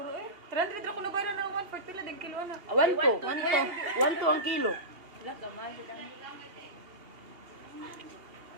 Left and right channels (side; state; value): left; late; 2.8 ms